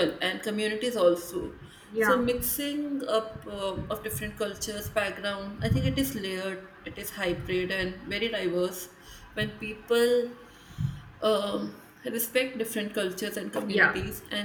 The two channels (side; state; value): both; identical; correlation 1.00